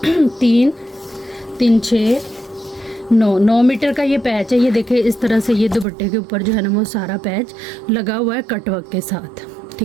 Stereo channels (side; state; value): left; drops out; at 5.9 s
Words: 3 3 6 9 मीटर का ये पैच है। ये देखें इस तरह से ये दुपट्टे के ऊपर जो है ना वो सारा पैच लगा हुआ है कटवर्क के साथ,